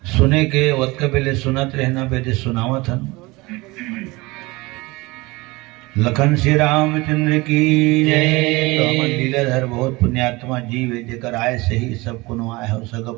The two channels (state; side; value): quieter; left; 22.8 dB